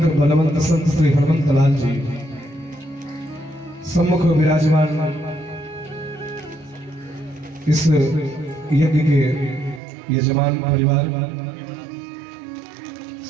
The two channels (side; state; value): left; drops out; at 9.8 s